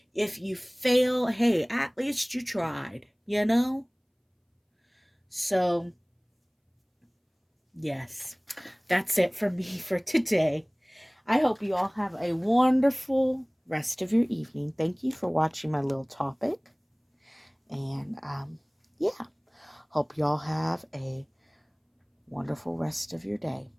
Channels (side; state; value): both; identical; correlation 1.00